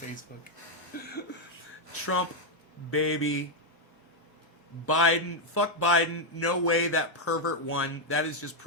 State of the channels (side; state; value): both; normal; correlation 0.01